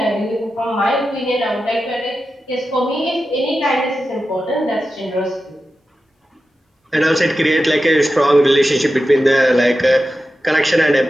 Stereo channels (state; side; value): normal; both; correlation 0.92